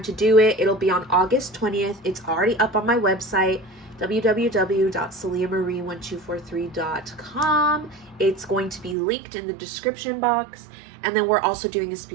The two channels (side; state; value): left; drops out; at 9.0 s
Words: to do it. It'll be on August 20th. It's already up on my website, www.saliamarie1243.com. It's going to be linked in the description box. And then we're also doing a